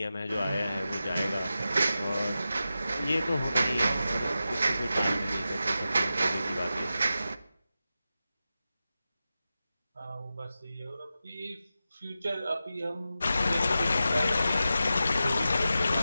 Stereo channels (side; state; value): both; inverted; correlation -0.92